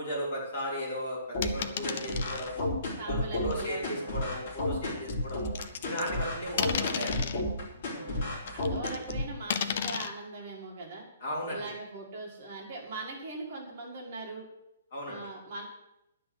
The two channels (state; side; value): inverted; both; correlation -0.58